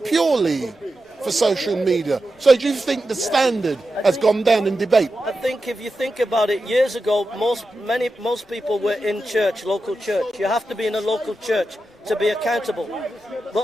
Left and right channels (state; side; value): normal; both; correlation 0.90